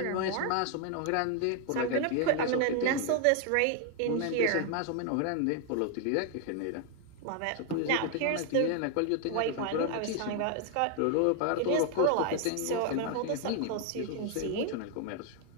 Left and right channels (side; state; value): both; different; correlation 0.00